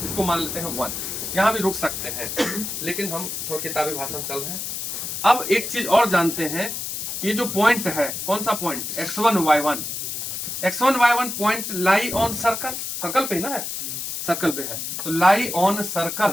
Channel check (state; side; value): noise; left; hiss, 5 dB below the sound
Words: इसको मान लेते हैं 1। यहाँ भी रुक सकते हैं, लेकिन हम थोड़ा किताबी भाषा में चल रहे हैं। अब एक चीज और जानते हैं, ये जो पॉइंट है, कौन सा point, x1 y1 point lie on circle, circle पे ना है, सर्कल पे है, तो lie on